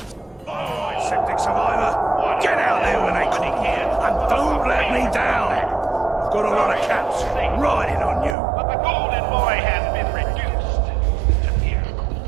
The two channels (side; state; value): left; drops out; at 8.3 s